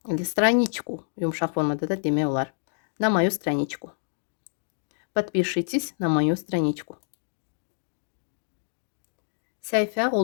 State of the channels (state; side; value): silent; right; digital silence